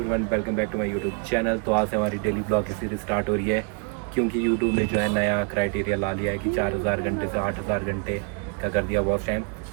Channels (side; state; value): left; quieter; 35.3 dB